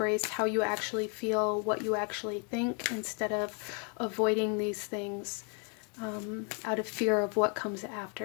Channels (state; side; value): quieter; right; 36.8 dB